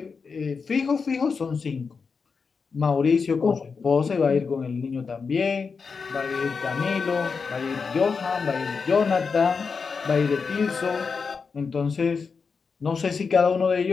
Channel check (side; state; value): right; quieter; 5.2 dB